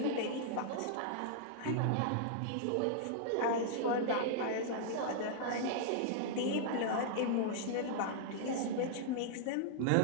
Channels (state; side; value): different; both; correlation -0.01